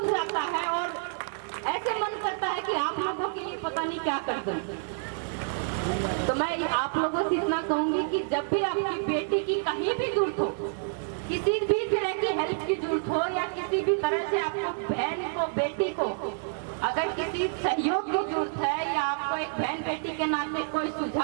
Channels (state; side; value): silent; left; digital silence